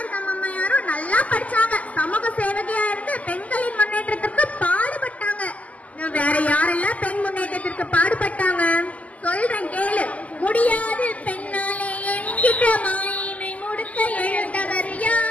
அம்மையாரும் நல்லா படிச்சாங்க. சமூக சேவகியா இருந்து பெண்களின் முன்னேற்றத்திற்கு பாடுபட்டாங்க. வேற யாரெல்லாம் பெண் முன்னேற்றத்திற்கு பாடுபட்டாங்க சொல்றேன் கேளு. முடியாது பெண்ணாலே என்கிற மாயினை முடுக்க எழுந்தவர்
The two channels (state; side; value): late; right; 0.073 ms